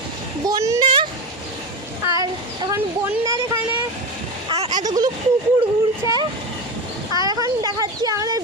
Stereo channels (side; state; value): both; normal; correlation 0.20